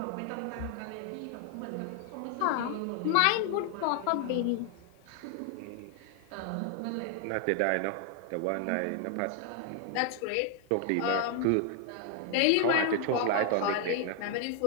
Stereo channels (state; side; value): different; both; correlation 0.00